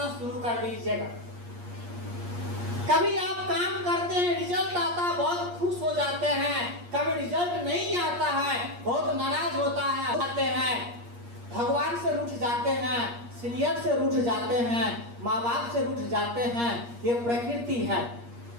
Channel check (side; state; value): left; late; 8.5 ms